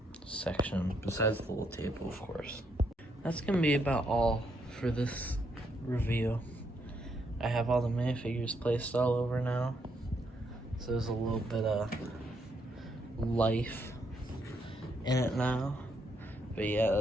section, besides the little table, of course. That's gonna be about all for this review. I have all the minifigures placed all over now, so there's a little bit of life in it now. But yeah,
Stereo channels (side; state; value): both; normal; correlation 0.75